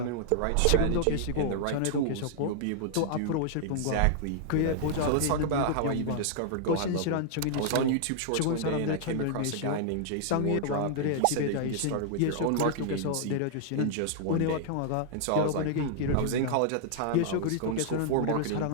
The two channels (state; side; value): different; both; correlation -0.01